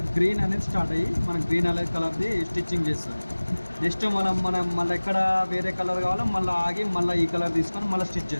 గ్రీన్ అనేది స్టార్ట్ అయ్యి మనం గ్రీన్ అనేది కలర్ది స్టిచ్చింగ్ చేస్తాం. నెక్స్ట్ మనం మళ్ళీ ఎక్కడ వేరే కలర్ కావాలో మళ్ళీ ఆగి మళ్ళీ ఈ కలర్ తీసుకొని మళ్ళీ స్టిచ్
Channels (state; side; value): inverted; both; correlation -1.00